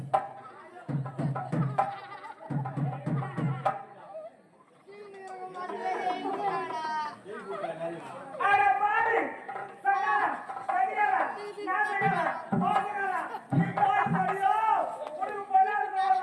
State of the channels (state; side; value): identical; both; correlation 1.00